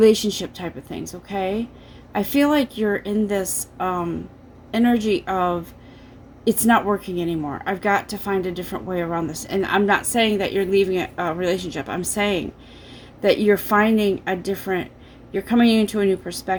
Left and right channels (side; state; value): both; identical; correlation 1.00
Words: type of things, okay? I feel like you're in this energy of, it's not working anymore. I've got to find a different way around this. And I'm not saying that you're leaving a relationship. I'm saying that you're finding a different, you're coming into a new